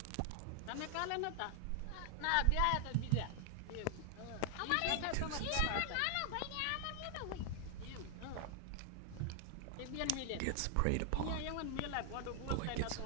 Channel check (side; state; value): both; different; correlation 0.00